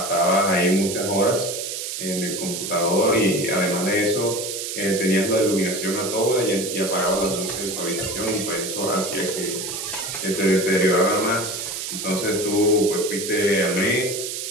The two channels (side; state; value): right; noise; hiss, 5 dB below the sound